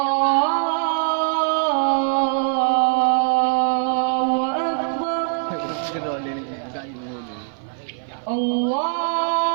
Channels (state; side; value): silent; left; 55 dB below the other